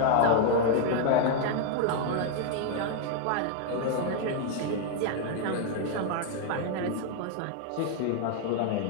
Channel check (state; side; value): different; both; correlation 0.00